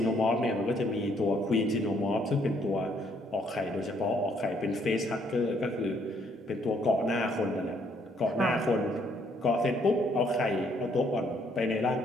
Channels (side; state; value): both; normal; correlation 0.68